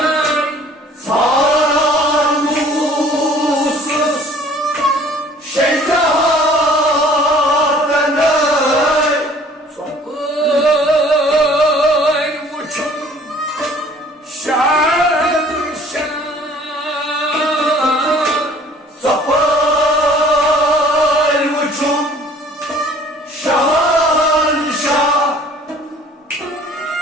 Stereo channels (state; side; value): normal; both; correlation 0.53